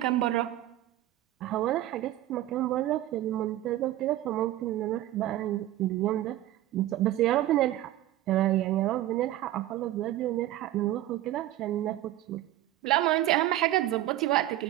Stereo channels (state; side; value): quieter; left; 14.5 dB